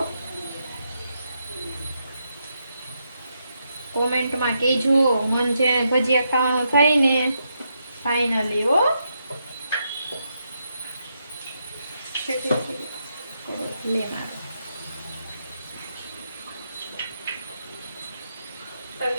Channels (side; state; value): both; inverted; correlation -0.82